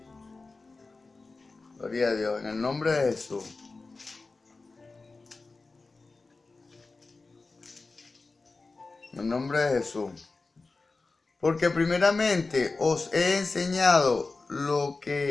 Gloria a Dios, en el nombre de Jesús. En el nombre de Jesús. Porque primeramente os he enseñado lo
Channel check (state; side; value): quieter; right; 3.7 dB